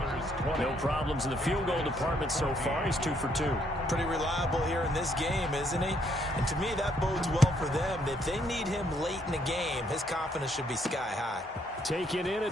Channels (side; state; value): both; normal; correlation 0.70